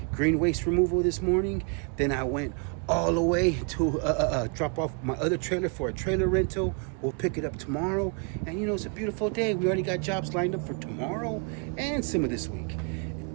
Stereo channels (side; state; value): left; quieter; 36.2 dB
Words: green waste removal this morning. Then I went all the way to drop off my other trailer for a trailer rental. We'll pick it up tomorrow. And, you know, it's a beautiful day. We already got jobs lined up for tomorrow and some of this week.